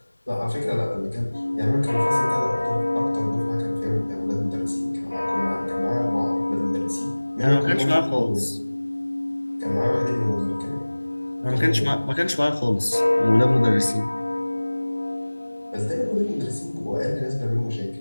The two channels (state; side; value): inverted; both; correlation -1.00